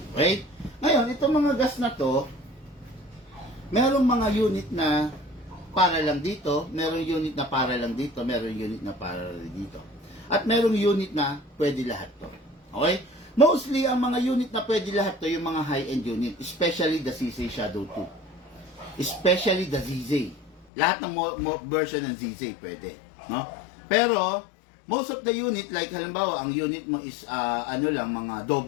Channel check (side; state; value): right; drops out; at 20.7 s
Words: Okay? Ngayon, itong mga gas na to, merong mga unit na para lang dito, merong unit na para lang dito, merong unit na para lang dito. At merong unit na pwede lahat to. Okay? Mostly, ang mga unit na pwede lahat to, yung mga high-end unit, especially the CC Shadow 2. Especially the ZZ. Lahat ng version ng ZZ pwede. No? Pero, most of the unit, like halimbawa, ang unit mo is, mga